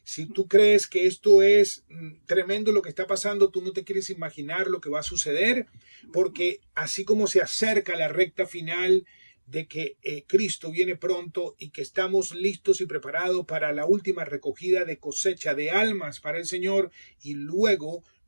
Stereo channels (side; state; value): both; inverted; correlation -1.00